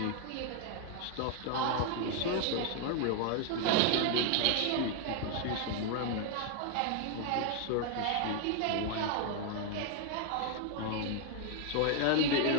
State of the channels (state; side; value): different; both; correlation 0.00